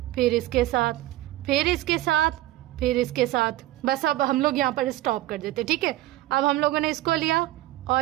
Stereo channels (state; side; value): quieter; left; 16.1 dB